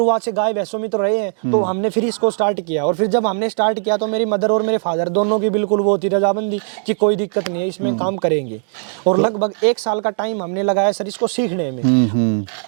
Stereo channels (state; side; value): silent; left; digital silence